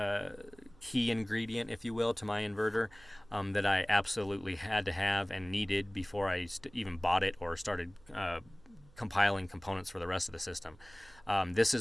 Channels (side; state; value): right; noise; hum, 26 dB below the sound